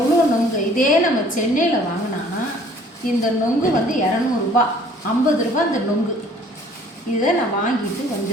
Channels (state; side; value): normal; both; correlation 0.54